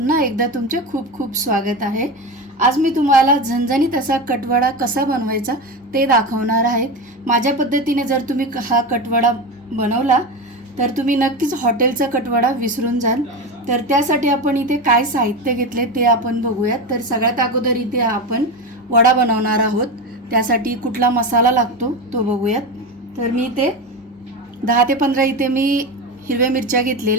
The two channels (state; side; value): normal; both; correlation 0.20